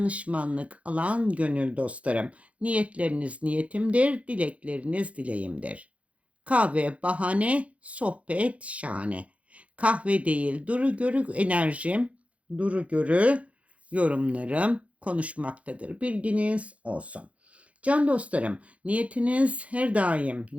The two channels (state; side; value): late; left; 0.064 ms